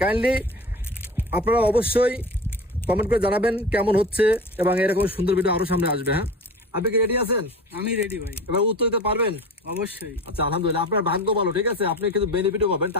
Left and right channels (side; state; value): both; normal; correlation 0.34